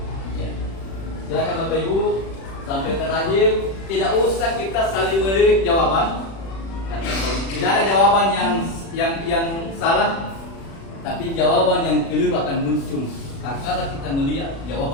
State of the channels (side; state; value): right; late; 36 ms